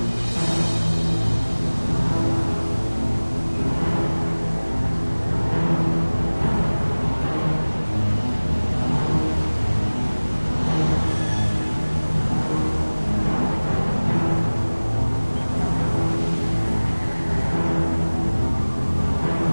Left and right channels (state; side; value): inverted; both; correlation -1.00